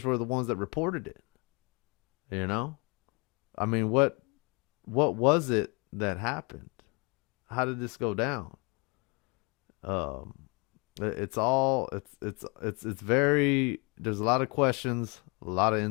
were the ones that reported it? You know, I mean, what was it that happened? How did this go down? It's very, there's a lot of questions, a lot of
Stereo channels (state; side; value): quieter; right; 30.2 dB